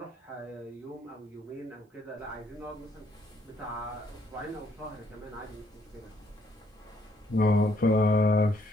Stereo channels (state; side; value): normal; both; correlation 0.69